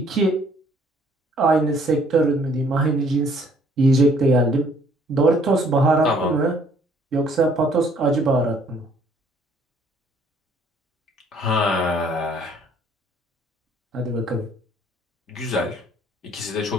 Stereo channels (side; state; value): both; normal; correlation 0.61